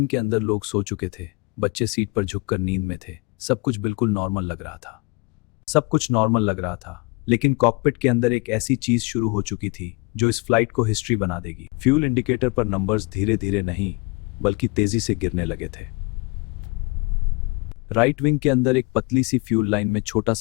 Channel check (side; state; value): right; quieter; 28.7 dB